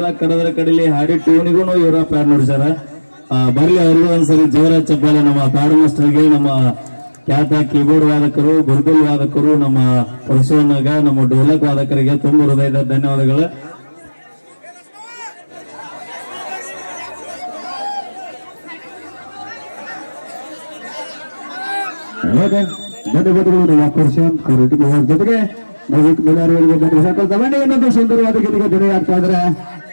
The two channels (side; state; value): both; inverted; correlation -1.00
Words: ಕಡದ್ರ ಕಡಲಿ ಹಾಡಿ ಟೂನಿಗೂ ಇವರ ಪ್ಯಾಡ್ ನುಡಿಸ್ಯಾರ. ಬರ್ಲಿ ಅವ್ರಿಗೂ ಒಂದ್ಸರಿ ಜೋರ ಚಪ್ಪಾಳೆ ನಮ್ಮ ಪ್ಯಾಡ್ ಮಾಸ್ಟರ್ಗೆ, ನಮ್ಮ ಖ್ಯಾತ ಕೀಬೋರ್ಡ್ ವಾದಕರು, ಗುರುಗುಲ್ ವಾದಕರು, ನಮ್ಮ ಪರಶುವನ್ನಾಗ, ನಮ್ಮ ಡೋಲಕ್ ವಾದಕರಿಗೆ ತುಂಬ ಹೃದಯದ ಧನ್ಯವಾದಗಳು. ಧನ್ಯವಾದಗಳು ನಮ್ಮ ಪ್ರಶಾಂತ್ ಕಾರಟಗಿ ಅವರ ಜೊತೆಗೆ ಇನ್ನೊಂದು ಸುಂದರವಾದ ಗೀತೆಗೆ ಧ್ವನಿ ಆಗ್ತಾ ಇದ್ರೆ